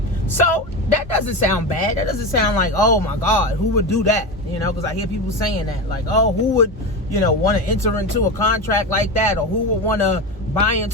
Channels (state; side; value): normal; both; correlation 0.20